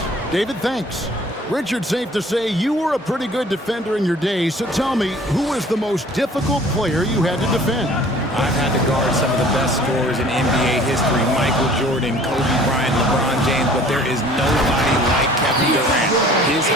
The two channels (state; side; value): normal; both; correlation 0.51